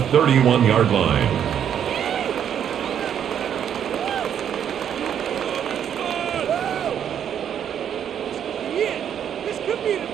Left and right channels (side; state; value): left; quieter; 9.0 dB